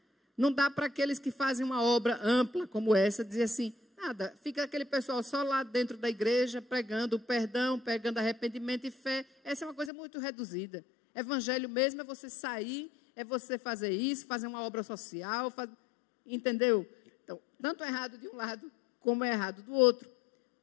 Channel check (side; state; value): right; drops out; at 9.9 s